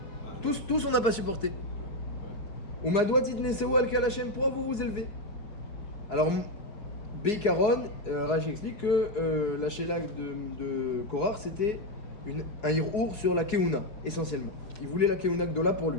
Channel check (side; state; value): right; late; 4.7 ms